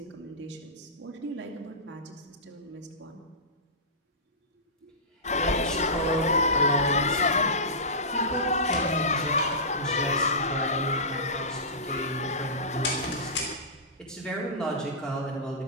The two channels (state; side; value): normal; both; correlation -0.20